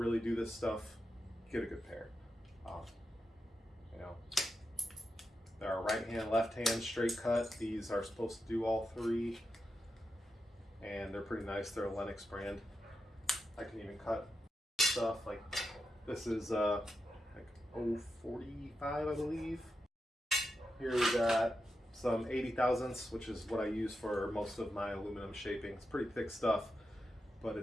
do this stuff, get a good pair. There are right hand, left hand, straight cut. These are supposed to do all 3, and they're pretty nice. They're a Lennox brand. I can even cut stuff like this is like 045, I believe. Here we got some 80 thousandths, which is what I use for most of my aluminum shaping. It's pretty thick stuff, but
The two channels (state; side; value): normal; both; correlation 0.88